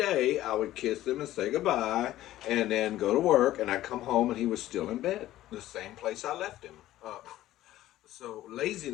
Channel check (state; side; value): quieter; right; 14.5 dB